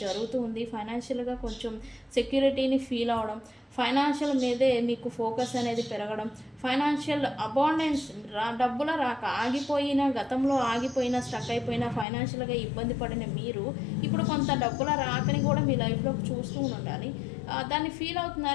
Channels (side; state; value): right; drops out; at 12.1 s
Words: జరుగుతూ ఉంది. ఫైనాన్షియల్గా కొంచెం సెక్యూరిటీని ఫీల్ అవడం, ఫైనాన్షియల్ మీదే మీకు ఫోకస్ అనేది పెరగడం, ఫైనాన్షియల్ అబాండెన్స్, డబ్బుల రాక గతంలో ఆగిపోయిన స్టక్ అయిపోయిన ఫైనాన్షియల్గా ఇబ్బంది పడిన మీరు ఇప్పుడు కొంత డబ్బుల రాకని కూడా మీ లైఫ్లోకి చూస్తూ ఉండాలి, దాన్ని ఫీల్